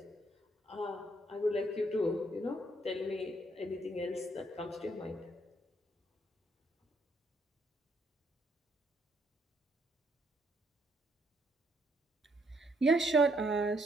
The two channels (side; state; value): both; normal; correlation 0.71